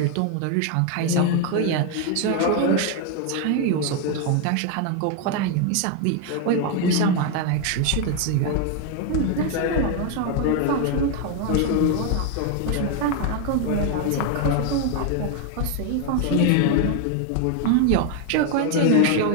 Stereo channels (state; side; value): different; both; correlation 0.01